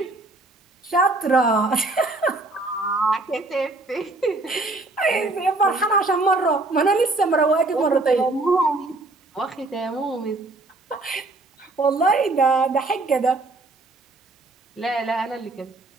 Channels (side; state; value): left; quieter; 3.1 dB